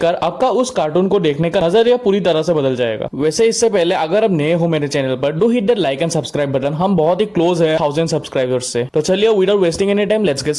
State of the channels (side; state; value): both; identical; correlation 1.00